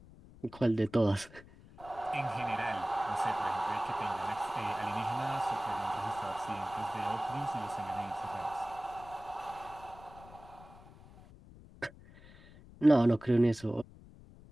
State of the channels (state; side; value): noise; left; rumble, 20 dB below the sound